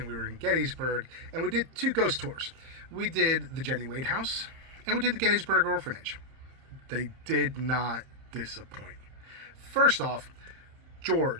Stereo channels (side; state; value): left; late; 30 ms